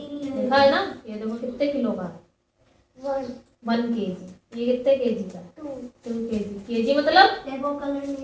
है ना, ये देखो कितने किलो का है, 1 केजी। ये कितने केजी का, 2 केजी। केजी मतलब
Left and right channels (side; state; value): both; identical; correlation 1.00